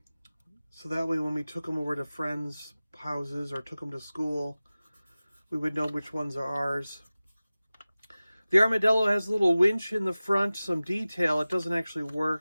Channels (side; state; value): both; inverted; correlation -0.97